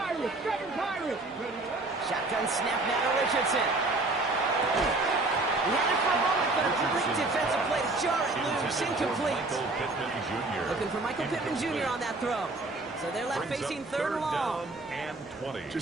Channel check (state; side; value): quieter; left; 3.1 dB